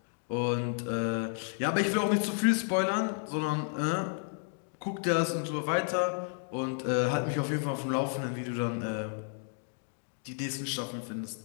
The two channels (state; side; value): silent; right; 57 dB below the other